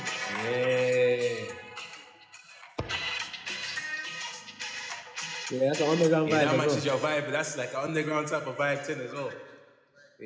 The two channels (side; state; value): both; identical; correlation 1.00